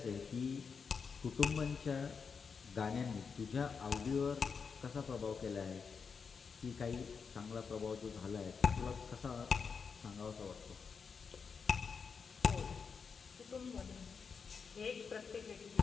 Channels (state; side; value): quieter; right; 5.7 dB